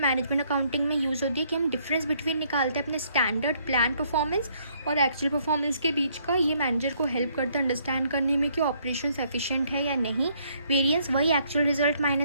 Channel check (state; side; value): inverted; both; correlation -0.68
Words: मैनेजमेंट अकाउंटिंग में यूज़ होती है कि हम डिफरेंस बिटवीन निकालते हैं अपने स्टैंडर्ड प्लान परफॉर्मेंस और एक्चुअल परफॉर्मेंस के बीच का। ये मैनेजर को हेल्प करता है अंडरस्टैंड करने में कि ऑपरेशंस एफिशिएंट है या नहीं। वेरिएंस वही actual result